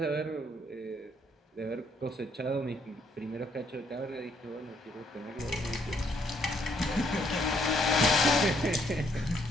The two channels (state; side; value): normal; both; correlation 0.71